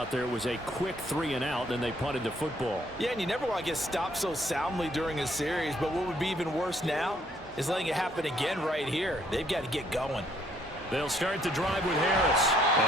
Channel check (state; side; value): normal; both; correlation 0.67